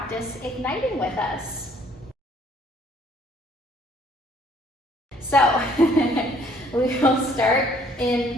igniting with us. So, we will start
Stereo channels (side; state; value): both; normal; correlation 0.61